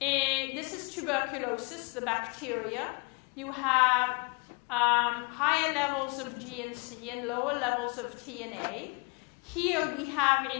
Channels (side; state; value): right; quieter; 31.5 dB